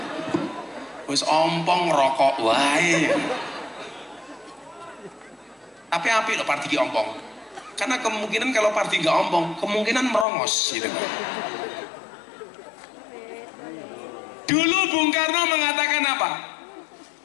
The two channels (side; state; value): right; drops out; at 10.2 s